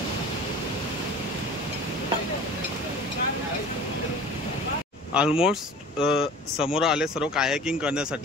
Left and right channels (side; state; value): both; normal; correlation 0.42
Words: ऑलमोस्ट समोर आले सर्व कायाकिंग